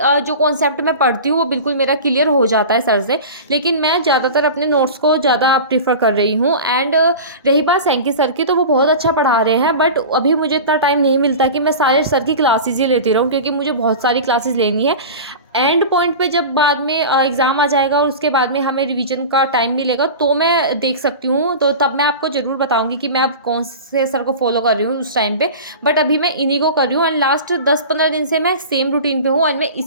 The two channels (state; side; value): inverted; both; correlation -0.32